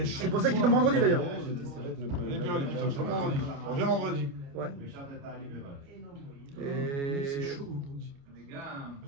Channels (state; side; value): late; left; 29 ms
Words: C'est pour ça qu'il tombe vendredi d'ailleurs. On vient vendredi. Ouais. Et. C'est chaud vendredi.